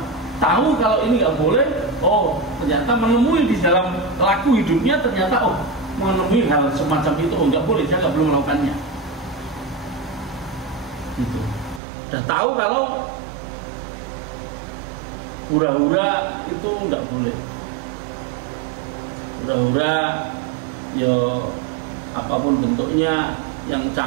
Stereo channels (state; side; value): drops out; left; at 11.8 s